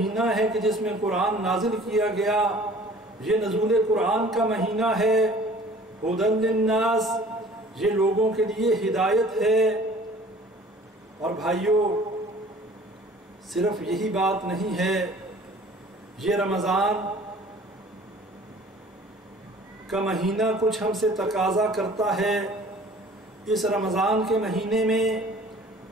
ہے کہ جس میں قرآن نازل کیا گیا، یہ نزول قرآن کا مہینہ ہے۔ ھدی للناس، یہ لوگوں کے لیے ہدایت ہے۔ اور بھائیوں، صرف یہی بات نہیں ہے، یہ رمضان کا مہینہ کچھ ہم سے تقاضا کرتا ہے۔ اس رمضان کے مہینے میں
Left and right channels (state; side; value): normal; both; correlation 0.49